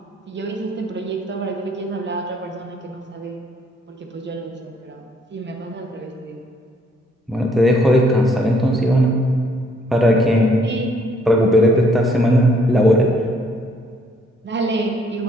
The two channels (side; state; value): both; normal; correlation 0.66